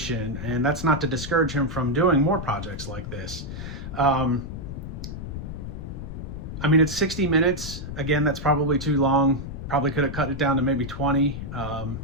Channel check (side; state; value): left; noise; rumble, 8 dB below the sound